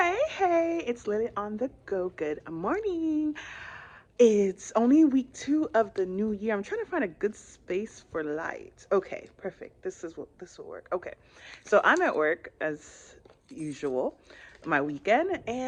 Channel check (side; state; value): both; identical; correlation 1.00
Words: hey, it's Lily on the go. Good morning. It's only week 2 of the new year. I'm trying to find a good space for light. Okay, perfect. This will work. Okay. So I'm at work as usual, my weekend,